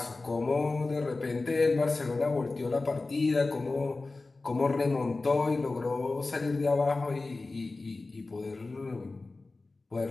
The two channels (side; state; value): right; quieter; 3.5 dB